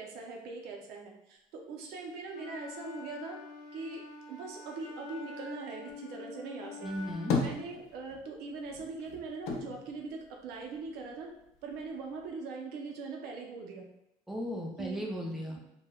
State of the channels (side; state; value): both; normal; correlation 0.51